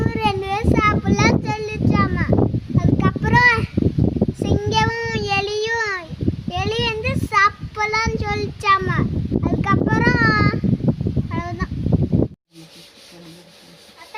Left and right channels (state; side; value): identical; both; correlation 1.00